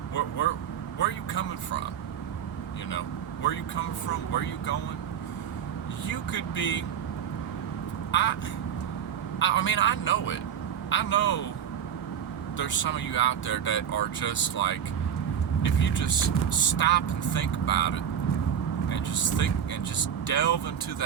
Where are you coming from? You know, where are you coming from? Where are you going? You could be... I mean, I know it. I know there's some of you out there that are just like, if you just stop and think about it, and just think and just delve into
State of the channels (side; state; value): left; quieter; 8.8 dB